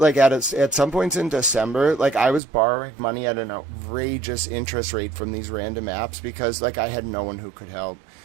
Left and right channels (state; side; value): drops out; left; at 2.4 s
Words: at some points in December, like, I was borrowing money at an outrageous interest rate from these random apps because, like, I had no one who could help.